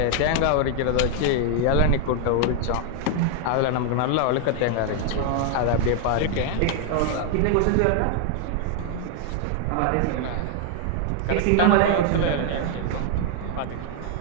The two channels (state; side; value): different; both; correlation 0.00